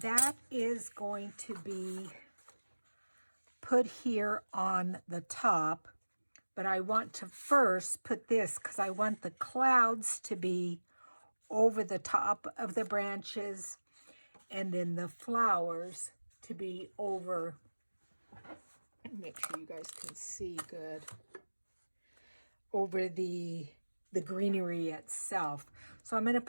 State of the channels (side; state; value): both; inverted; correlation -1.00